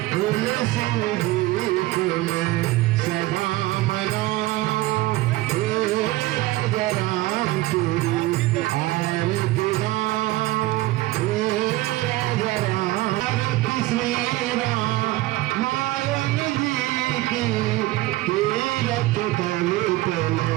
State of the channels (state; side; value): quieter; left; 18.6 dB